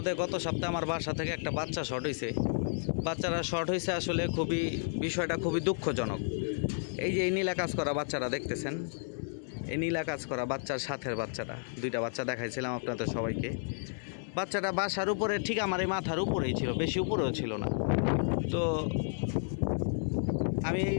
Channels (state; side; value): silent; right; 56 dB below the other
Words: গত সপ্তাহে আমার বাসা থেকে একটা বাচ্চা শর্ট হয়েছে। বাচ্চারা শর্ট হয়েছে আসলে বিষয়টা খুবই দুঃখজনক। এই যে এই নীলা কাজ করা বাচ্চারা দেখতেছেন, এই নীলা কাজ করা বাচ্চার সাথের বাচ্চাটা, দুইটা বাচ্চা দেখাইছিলাম আপনাদের সবাইকে। বাচ্চাটা বাসার উপরে ঠিক আমার এই মাথার উপরেই ছিল, বেশি উপরেও ছিল না। তো আমি এই